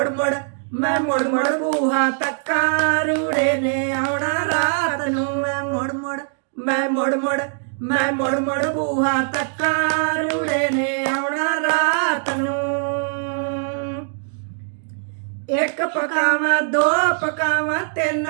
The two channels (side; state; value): left; silent; digital silence